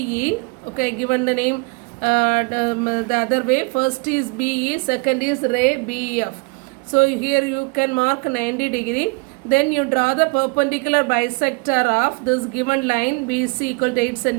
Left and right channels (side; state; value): left; quieter; 30.0 dB